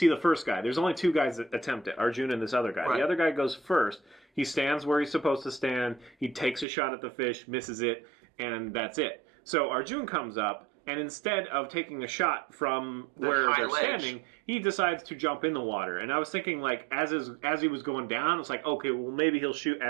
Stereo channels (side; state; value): left; drops out; at 6.7 s